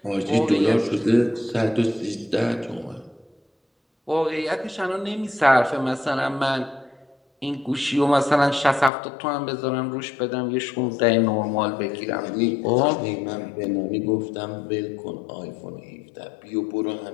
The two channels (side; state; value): right; drops out; at 8.9 s